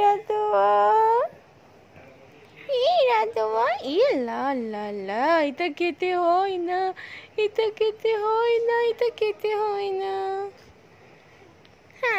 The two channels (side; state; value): both; identical; correlation 1.00